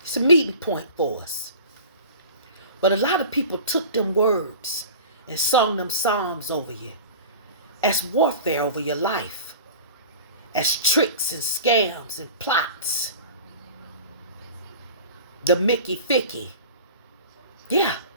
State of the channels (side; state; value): both; inverted; correlation -0.38